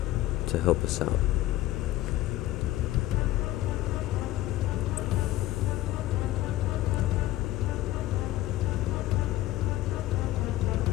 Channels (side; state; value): right; quieter; 15.3 dB